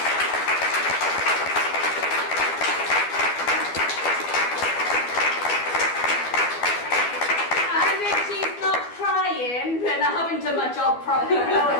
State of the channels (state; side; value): late; right; 12 ms